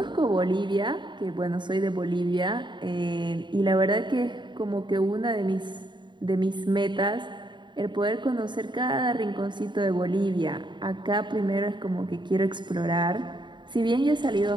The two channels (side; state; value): left; late; 0.22 ms